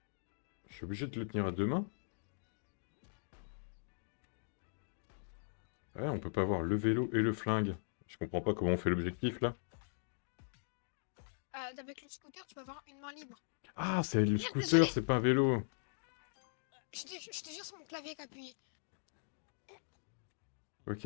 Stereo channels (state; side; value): silent; right; digital silence